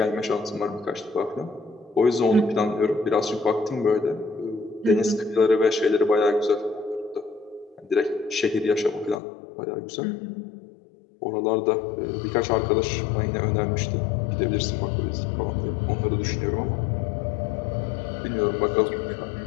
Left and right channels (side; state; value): right; drops out; at 9.2 s